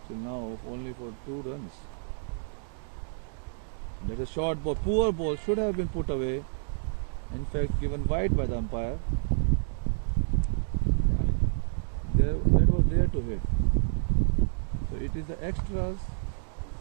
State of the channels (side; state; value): left; silent; digital silence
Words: till now, only for 2 runs. That's a short ball, poor ball, should have been put away. In fact, given wide by the umpire. That was there to hit. So it is the extras